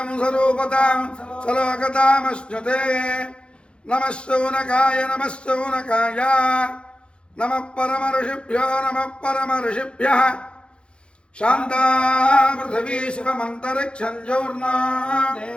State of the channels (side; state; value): right; late; 0.056 ms